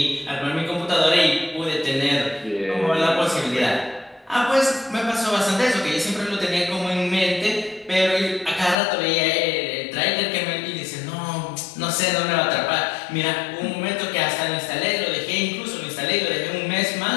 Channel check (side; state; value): right; drops out; at 8.8 s